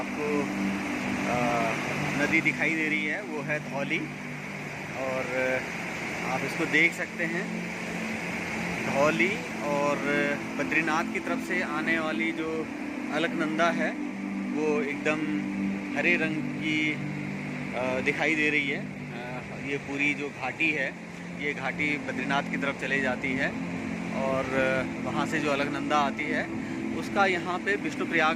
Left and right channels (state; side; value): identical; both; correlation 1.00